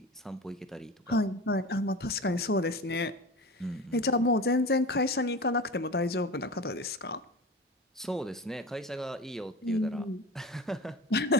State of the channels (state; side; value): normal; both; correlation 0.32